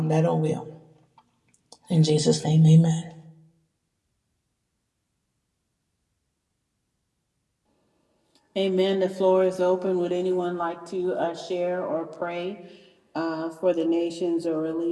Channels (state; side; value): identical; both; correlation 1.00